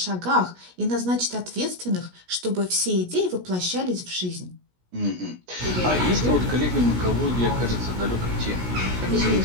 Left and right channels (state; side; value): late; left; 17 ms